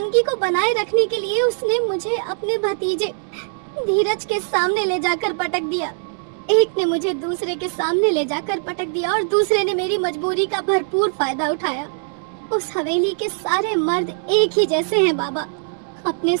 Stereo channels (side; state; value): left; silent; 65 dB below the other